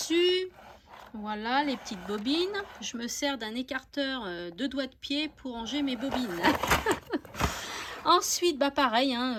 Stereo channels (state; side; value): identical; both; correlation 1.00